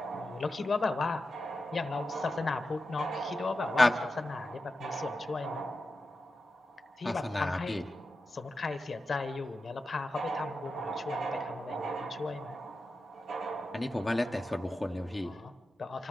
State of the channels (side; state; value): both; normal; correlation 0.91